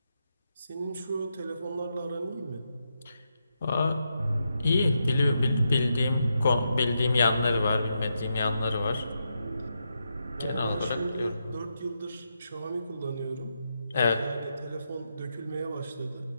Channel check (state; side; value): inverted; both; correlation -0.84